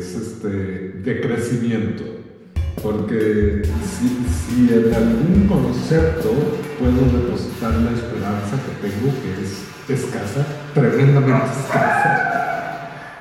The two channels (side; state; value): both; identical; correlation 1.00